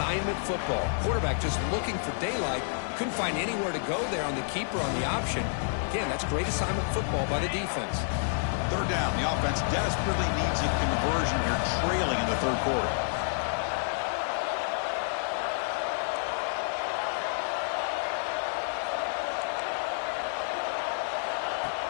football. Quarterback just looking for daylight. Couldn't find anywhere to go there on the keeper on the option. Again, that's great assignment football by the defense. 3rd down. The offense desperately needs a conversion here, trailing in the 3rd quarter.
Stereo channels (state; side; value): silent; right; digital silence